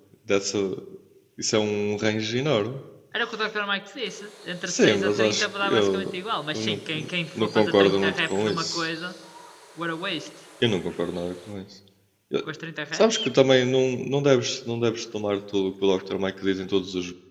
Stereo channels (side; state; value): both; identical; correlation 1.00